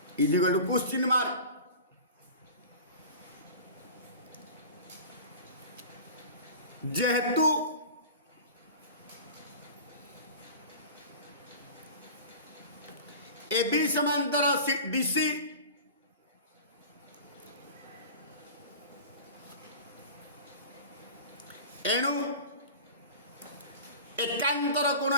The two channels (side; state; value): both; inverted; correlation -0.37